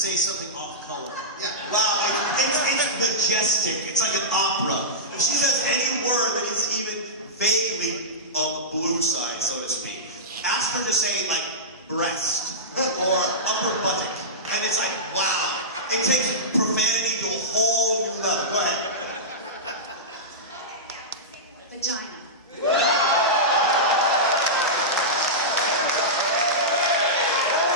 something off color. Yeah. Wow, it's majestic. It's like an opera. If she says any word that is even vaguely on the blue side, so to speak, ask her to say like breast or upper buttock, and it's like wow. It takes profanity to a whole new level. Go ahead. Vagina.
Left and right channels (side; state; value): both; normal; correlation -0.15